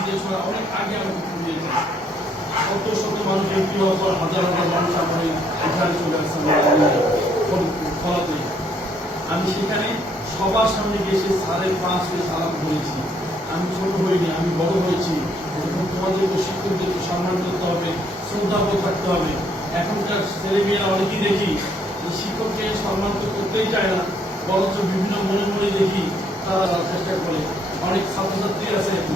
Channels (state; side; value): normal; both; correlation 0.68